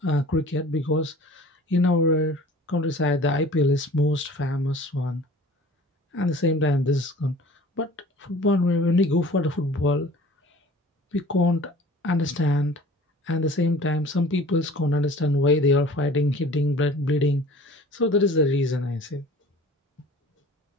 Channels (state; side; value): normal; both; correlation 0.45